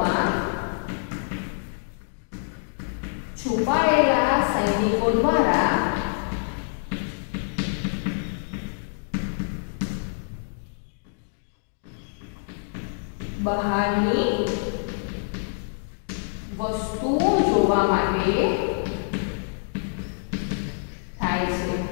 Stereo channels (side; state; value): right; silent; digital silence